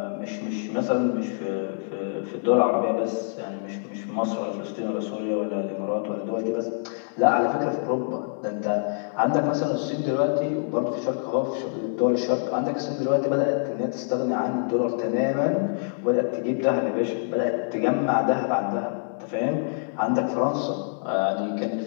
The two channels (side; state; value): right; silent; digital silence